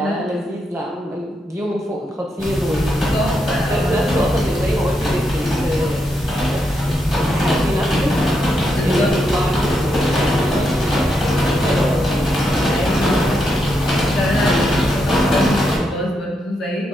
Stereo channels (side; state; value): both; normal; correlation 0.82